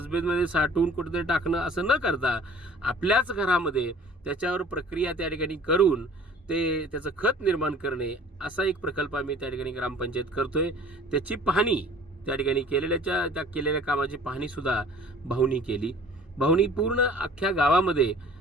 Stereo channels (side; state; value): both; normal; correlation 0.49